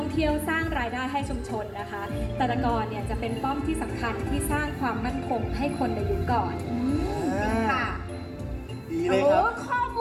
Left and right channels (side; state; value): both; identical; correlation 1.00